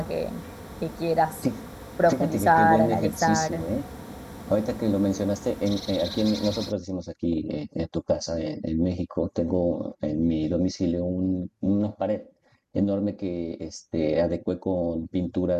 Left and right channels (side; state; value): both; identical; correlation 1.00